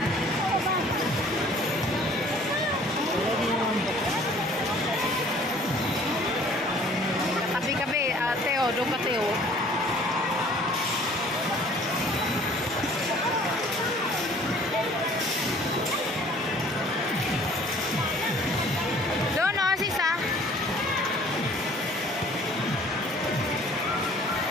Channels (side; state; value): both; normal; correlation 0.53